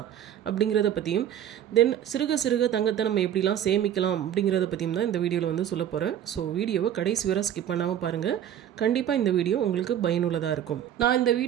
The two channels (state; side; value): quieter; left; 10.4 dB